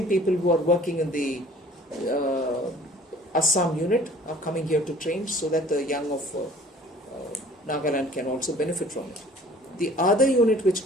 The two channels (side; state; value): both; normal; correlation 0.51